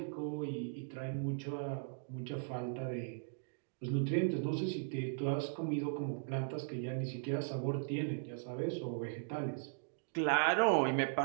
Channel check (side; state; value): left; silent; digital silence